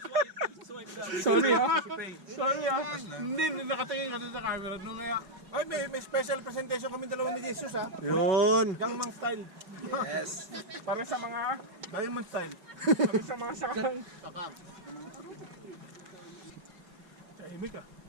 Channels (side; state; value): left; late; 5.3 ms